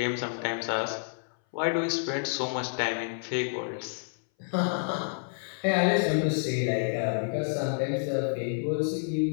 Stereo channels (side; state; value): right; silent; 58 dB below the other